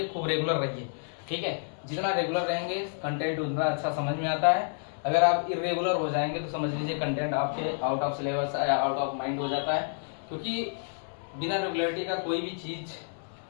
खूब रेगुलर रहिए, ठीक है। जितना रेगुलर रहेंगे कंटेंट उतना अच्छा समझ में आता है। अगर आप इरेगुलर हो जाएंगे तो समझ लीजिए कंटेंट आपके आउट ऑफ सिलेबस या आउट ऑफ माइंड हो जाता है, क्योंकि बिना रेगुलरिटी का कोई भी चीज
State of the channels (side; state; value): right; silent; 58 dB below the other